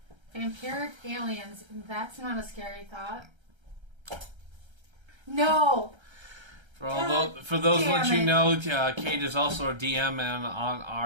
Vampiric aliens. That's not a scary thought. No. For those let you know, Kayde is also a DM on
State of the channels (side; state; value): left; late; 1.3 ms